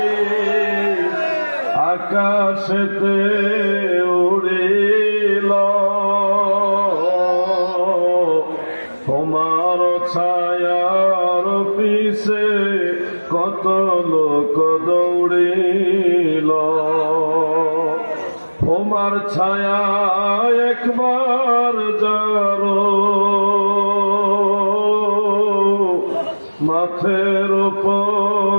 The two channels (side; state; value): both; inverted; correlation -1.00